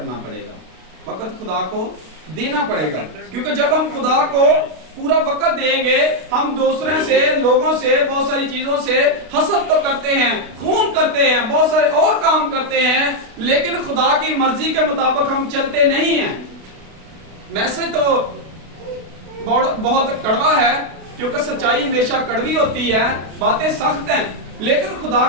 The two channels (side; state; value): left; late; 32 ms